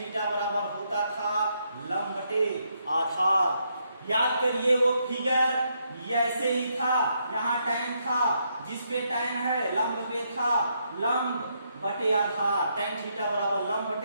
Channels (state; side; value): inverted; both; correlation -0.77